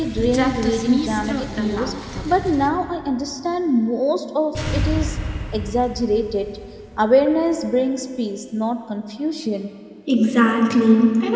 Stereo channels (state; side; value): identical; both; correlation 1.00